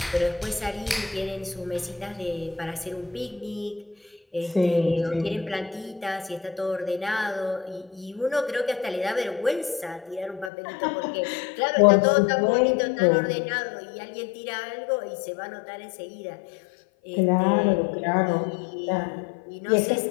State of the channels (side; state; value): right; drops out; at 10.5 s